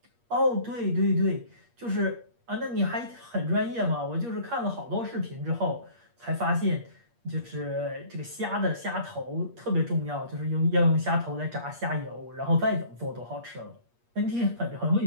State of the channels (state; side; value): late; left; 8.5 ms